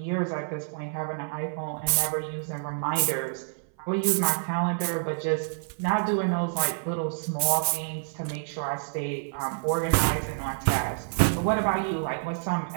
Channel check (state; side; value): silent; left; 60 dB below the other